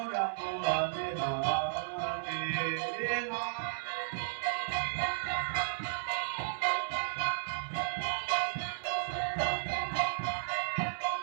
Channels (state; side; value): silent; left; 55 dB below the other